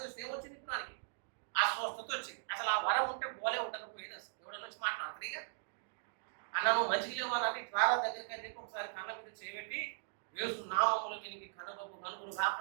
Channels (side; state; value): left; silent; digital silence